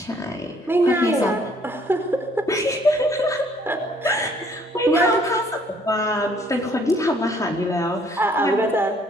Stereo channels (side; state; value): both; normal; correlation 0.62